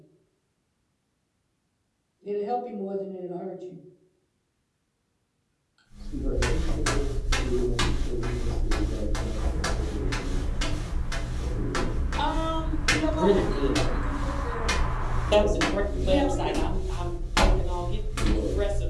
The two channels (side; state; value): both; identical; correlation 1.00